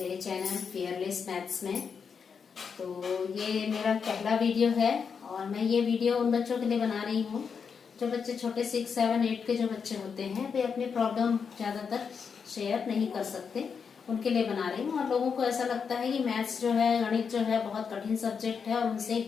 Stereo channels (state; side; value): quieter; right; 6.2 dB